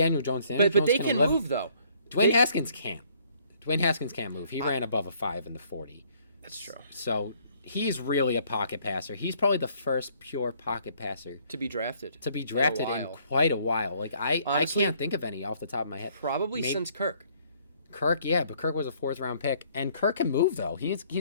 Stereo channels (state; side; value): inverted; both; correlation -0.63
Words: Jones. But they can move though. Dwayne Haskins can't. Dwayne Haskins can't move. He ran above a 5 in the 40. That's true. So he's really a pocket passer. He's probably the first pure pocket passer to be drafted. In quite a while. Like honestly, I can't think of any off the top of my head. Probably since Kirk. Kirk, yeah, but Kirk was a 4th-round pick, and Kirk can move though. He